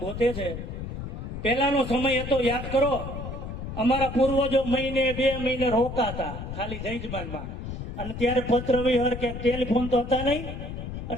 ગોતે છે, પેલાનો સમય હતો યાદ કરો. અમારા પૂર્વજો મહિને 2 મહિને રોકાતા ખાલી જયજમાનમાં, અને ત્યારે પત્ર વિહર કે ટેલિફોન તો હતા નહીં,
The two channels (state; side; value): noise; left; rumble, 7 dB below the sound